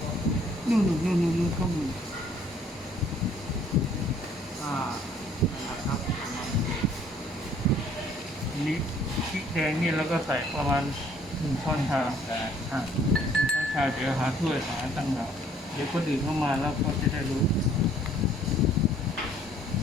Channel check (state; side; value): normal; both; correlation 0.60